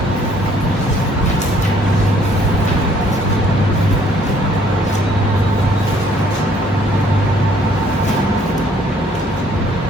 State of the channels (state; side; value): normal; both; correlation 0.62